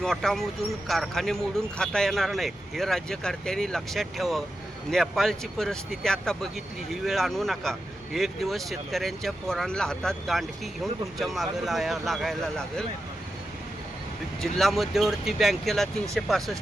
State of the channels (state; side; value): normal; both; correlation 0.89